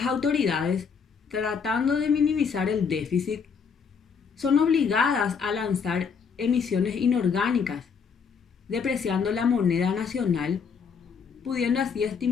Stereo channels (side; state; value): right; quieter; 6.1 dB